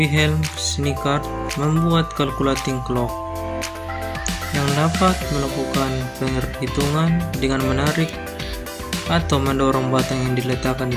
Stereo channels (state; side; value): identical; both; correlation 1.00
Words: Schweikart membuat calculating clock yang dapat melakukan perhitungan dengan menarik atau mendorong batang yang diletakkan di